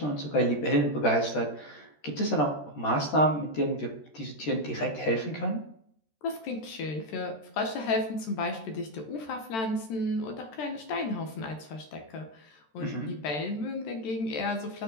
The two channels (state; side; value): late; right; 13 ms